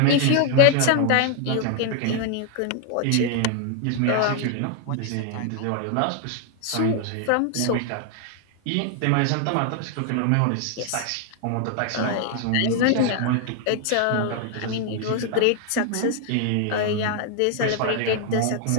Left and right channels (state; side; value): different; both; correlation 0.00